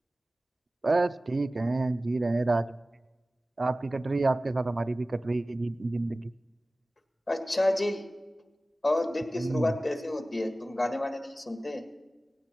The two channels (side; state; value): both; normal; correlation 0.97